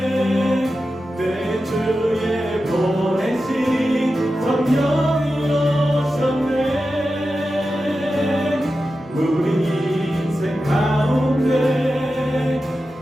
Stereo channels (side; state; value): both; normal; correlation 0.92